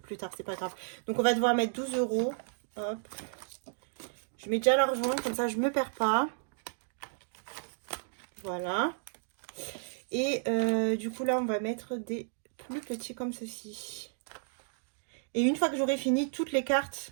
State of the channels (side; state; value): left; silent; digital silence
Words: plus tard, c'est pas grave. Donc on va devoir mettre 12 euros. Hop. Je mets déjà l'argent, comme ça je me perds pas. Voilà. Et du coup là on va mettre des plus petits comme ceci. Et une fois que j'aurai fini toutes les